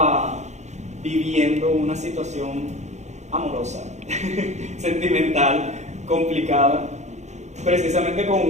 viviendo una situación amorosa, sentimental, complicada, precisamente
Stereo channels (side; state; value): left; late; 0.33 ms